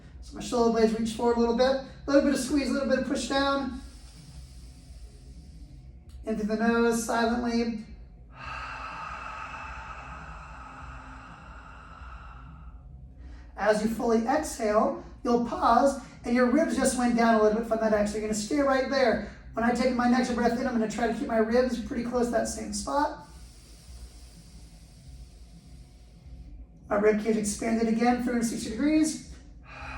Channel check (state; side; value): identical; both; correlation 1.00